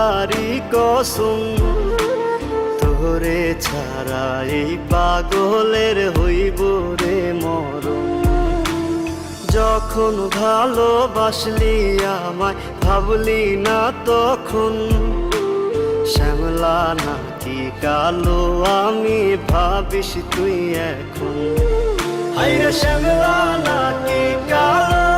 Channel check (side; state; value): both; identical; correlation 1.00